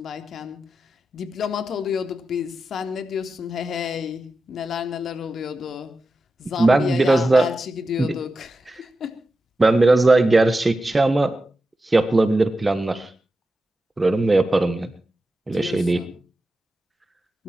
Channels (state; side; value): normal; both; correlation 0.92